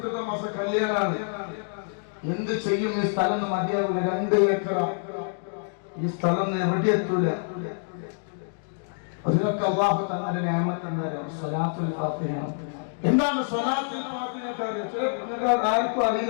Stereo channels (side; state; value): right; silent; digital silence